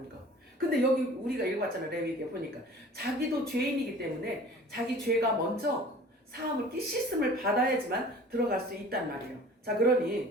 거. 근데 여기 우리가 읽어봤잖아요. 레위기에 보니까 자기도 죄인이기 때문에 자기 죄가 먼저 사함을 씻음을 받아야지만 들어갈 수 있단 말이에요. 자,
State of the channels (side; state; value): both; normal; correlation 0.45